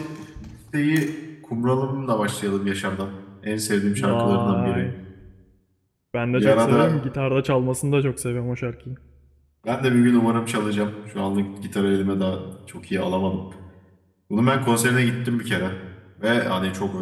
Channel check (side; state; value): both; identical; correlation 1.00